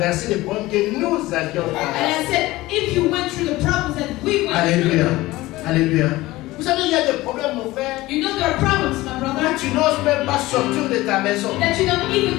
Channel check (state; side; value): quieter; right; 18.6 dB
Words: les problèmes que nous avions And traversés? I said, if you went through the problems that we went Alléluia. through, Alléluia. Vous savez, il y a des problèmes, mon frère. you know there are problems, my Là, brother, tu n'oses même pas sortir de ta maison. that you don't